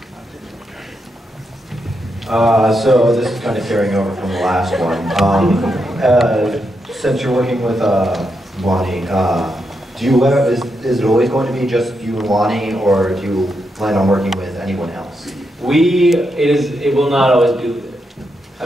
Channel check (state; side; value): normal; both; correlation 0.83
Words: So this is kind of carrying over from the last one. Since you're working with Wani, do you is it always going to be just you and Wani, or do you plan on working with anyone else? It will not always be.